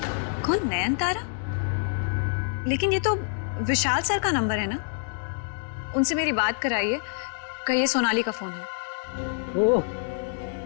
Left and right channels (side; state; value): right; silent; digital silence